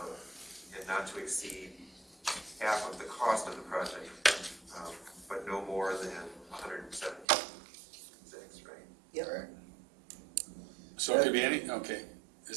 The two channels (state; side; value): drops out; left; at 7.2 s